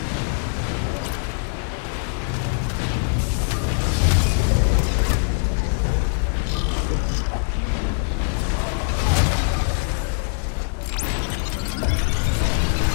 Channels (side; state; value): right; silent; digital silence